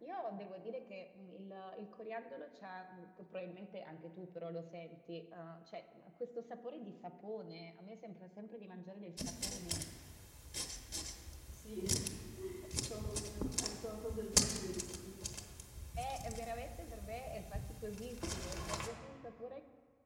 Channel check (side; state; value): both; identical; correlation 1.00